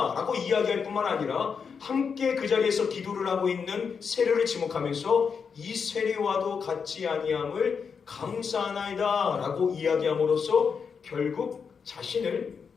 라고 이야기할 뿐만 아니라 함께 그 자리에서 기도를 하고 있는 세례를 지목하면서 이 세례와도 같지 아니함을 감사하나이다 라고 이야기함으로써 결국 자신을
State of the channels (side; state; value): right; quieter; 6.1 dB